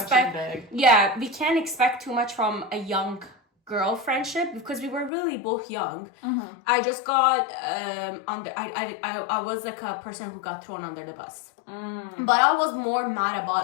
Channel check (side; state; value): right; drops out; at 5.1 s